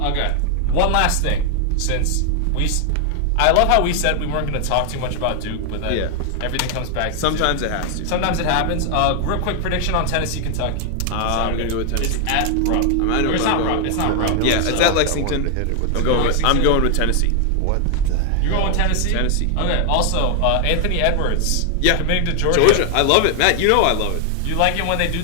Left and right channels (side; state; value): both; different; correlation 0.00